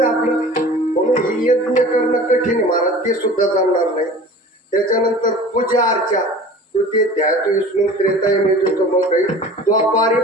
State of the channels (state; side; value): normal; both; correlation 0.41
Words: आपलं, म्हणून ही यज्ञ करणं कठीण आहे मला, ते सुद्धा चालणार नाही. त्याच्यानंतर पूजा अर्चा तृतीय ध्यात विष्णू त्रेताय मिळतो, मग काही द्वापारी